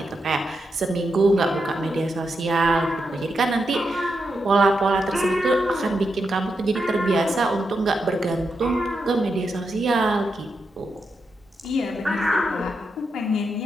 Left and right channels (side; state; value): both; normal; correlation 0.85